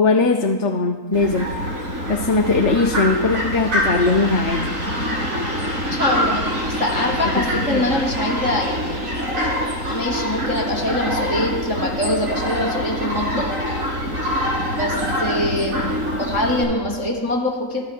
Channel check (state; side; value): late; left; 3.8 ms